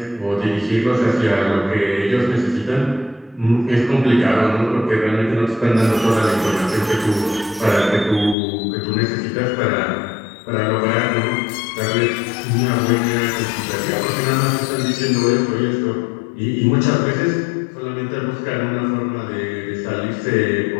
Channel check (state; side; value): drops out; right; at 8.3 s